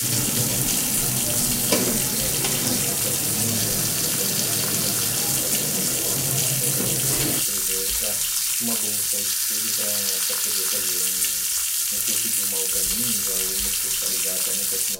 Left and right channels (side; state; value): both; identical; correlation 1.00